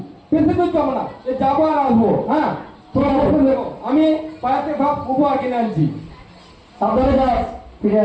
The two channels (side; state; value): both; identical; correlation 1.00